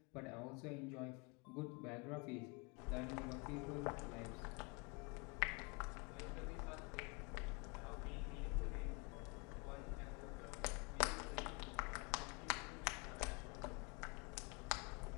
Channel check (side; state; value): right; quieter; 30.9 dB